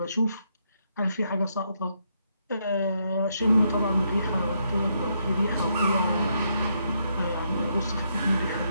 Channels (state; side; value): inverted; both; correlation -0.77